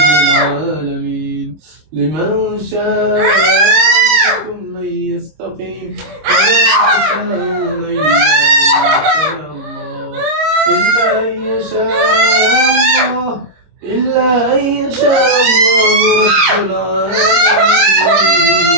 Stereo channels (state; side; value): late; left; 26 ms